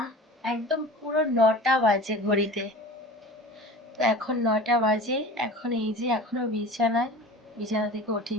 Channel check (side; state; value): both; normal; correlation 0.38